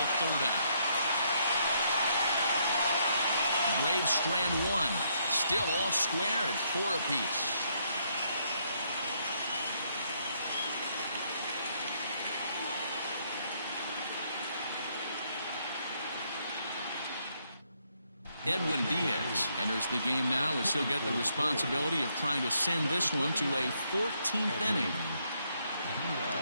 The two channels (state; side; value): inverted; both; correlation -0.73